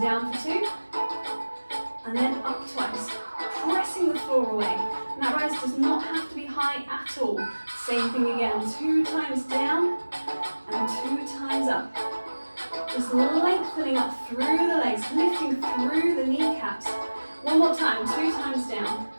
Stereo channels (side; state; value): both; inverted; correlation -1.00